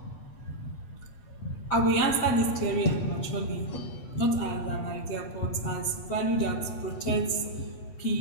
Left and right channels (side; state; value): right; late; 8.2 ms